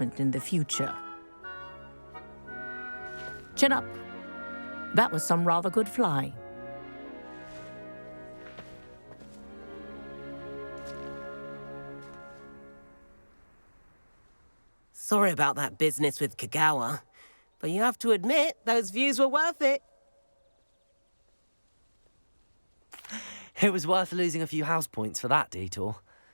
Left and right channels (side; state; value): both; inverted; correlation -1.00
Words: in the future. Chin up. That was some rather good flying. Sorry about that business with Kagawa, but you have to admit, those views were worth it. It was worth losing a few house points for that detour.